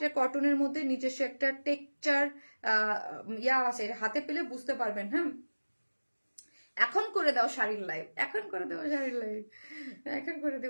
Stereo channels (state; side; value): inverted; both; correlation -1.00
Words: কটনের মধ্যে নিজস্ব একটা টেক্সচার ইয়া আছে, হাতে পেলে বুঝতে পারবেন। হ্যাঁ এখন করে দাও শাড়ির লাইভ, এখন করে দেবো শাড়ির লাইভ, এখন করে